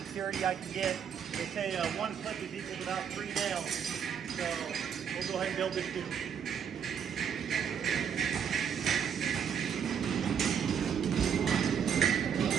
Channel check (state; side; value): quieter; left; 7.7 dB